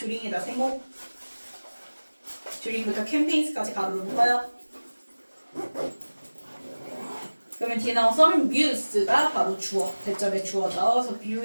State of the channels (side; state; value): both; inverted; correlation -1.00